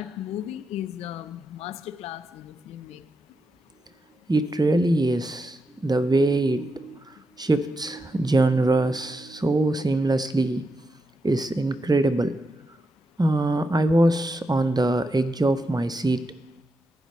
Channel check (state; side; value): normal; both; correlation 0.85